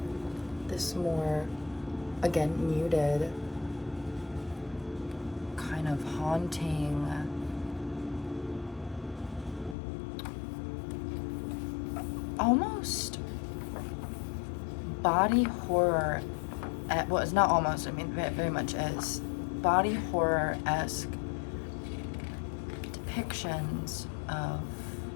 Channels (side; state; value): right; drops out; at 9.8 s